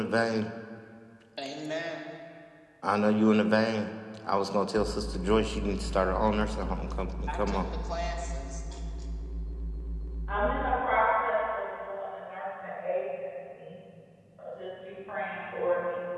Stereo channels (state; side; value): identical; both; correlation 1.00